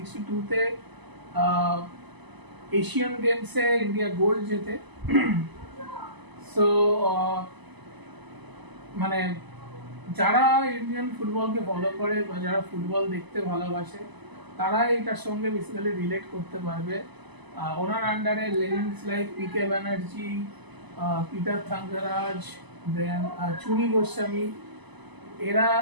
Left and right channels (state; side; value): late; left; 1.0 ms